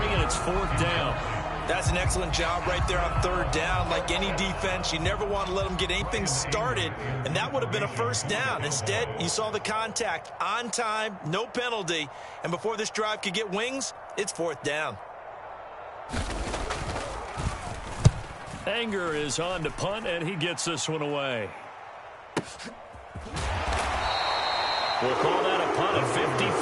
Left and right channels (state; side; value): identical; both; correlation 1.00